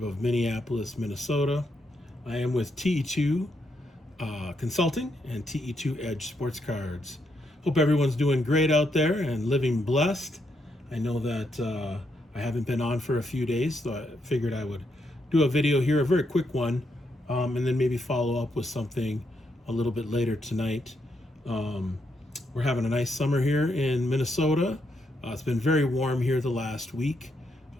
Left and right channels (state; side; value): normal; both; correlation 0.79